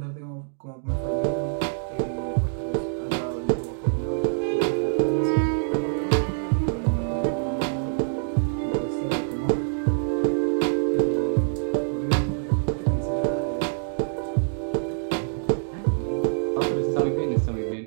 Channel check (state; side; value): silent; left; digital silence